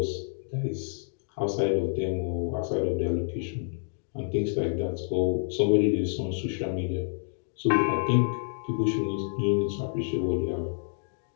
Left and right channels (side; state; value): right; silent; digital silence